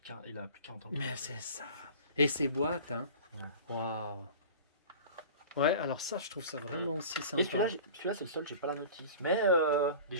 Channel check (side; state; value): both; inverted; correlation -0.39